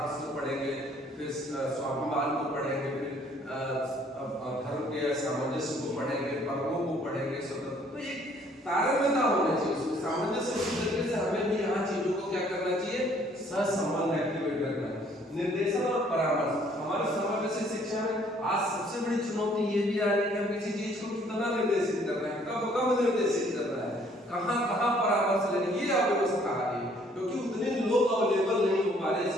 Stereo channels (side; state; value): both; normal; correlation 0.61